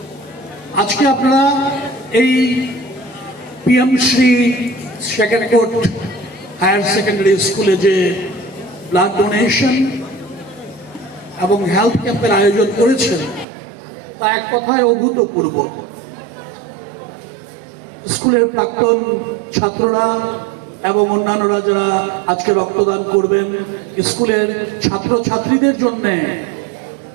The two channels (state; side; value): drops out; left; at 13.5 s